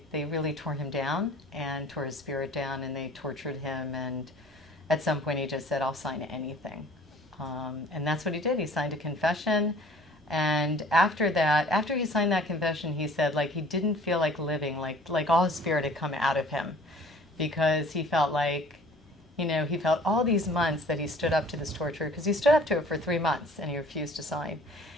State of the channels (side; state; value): both; normal; correlation 0.50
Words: really tore him down and tore his spirit down, and they tortured him. And at some point, he just said, I'll sign anything. And that's what he did. He signed a confession. And after he signed that confession, he said, like, he didn't feel like living, like all his spirit had come out of him, because he felt like, you know, he felt all these months that he stood up to this torture, because he stood up to it for 3 months and he refused to sign.